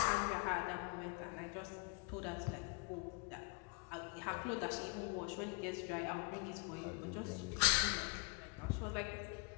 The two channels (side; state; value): right; quieter; 32.0 dB